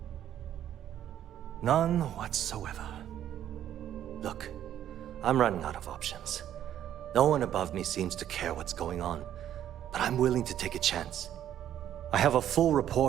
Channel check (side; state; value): left; quieter; 11.0 dB